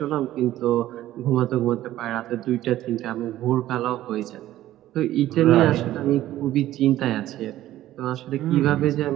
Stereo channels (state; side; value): quieter; left; 14.2 dB